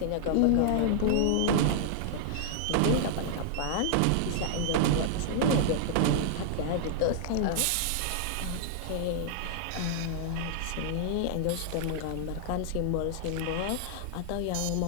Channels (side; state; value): both; different; correlation -0.01